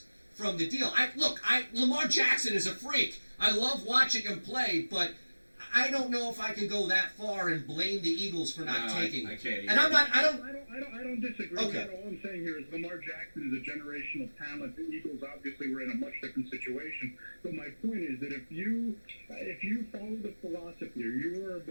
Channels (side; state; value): both; inverted; correlation -1.00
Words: from the deal. Lamar Jackson is a freak. I love watching him play, but I don't know if I can go that far and blame the Eagles for not taking it. I can't either. And I don't disagree with Okay. that. All I'm saying here is Lamar Jackson is a generational talent. The Eagles obviously were in a much different situation. But my point is that if you follow the philosophy, or you are a